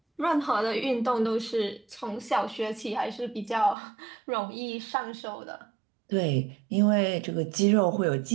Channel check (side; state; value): left; drops out; at 3.8 s